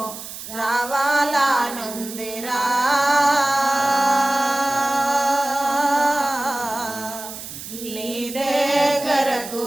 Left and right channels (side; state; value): right; noise; hiss, 11 dB below the sound